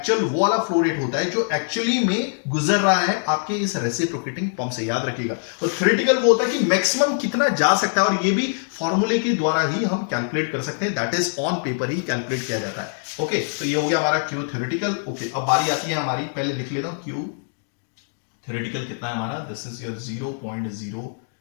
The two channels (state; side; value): silent; right; digital silence